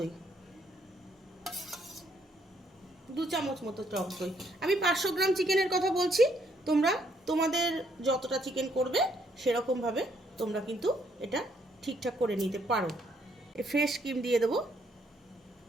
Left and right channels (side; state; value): both; normal; correlation 0.70